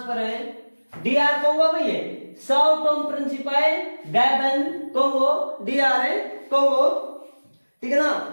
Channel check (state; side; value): inverted; both; correlation -1.00